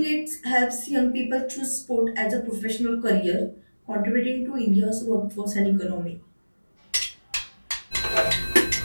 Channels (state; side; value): inverted; both; correlation -1.00